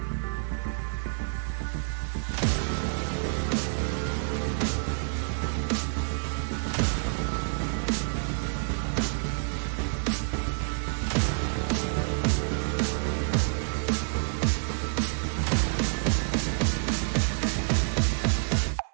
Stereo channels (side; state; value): left; silent; 59 dB below the other